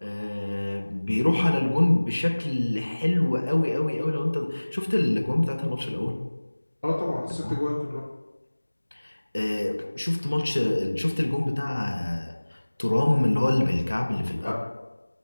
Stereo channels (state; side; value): inverted; both; correlation -1.00